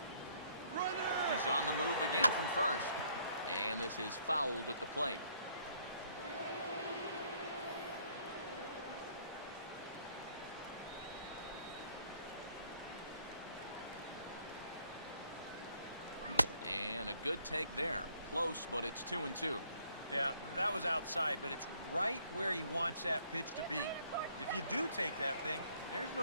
He's on the move again from first. And this is fouled at the plate. And a good take there. Close, but it's 2-2. Yeah, that was outside, but it's right where he wants that pitch to be. If you do take that thing, there's no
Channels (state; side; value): inverted; both; correlation -0.66